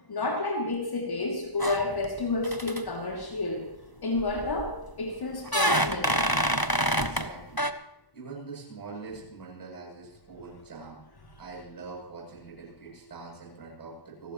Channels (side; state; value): right; late; 1.0 ms